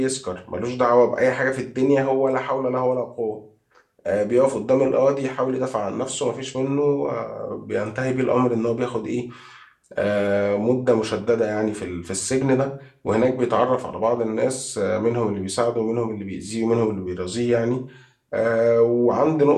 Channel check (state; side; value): identical; both; correlation 1.00